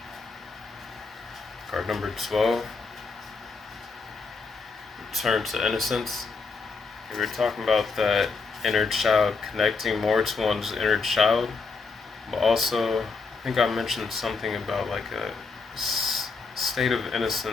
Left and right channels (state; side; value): quieter; right; 4.5 dB